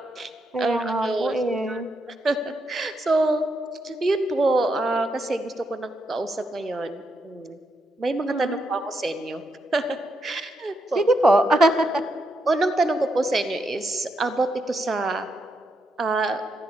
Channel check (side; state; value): both; normal; correlation 0.81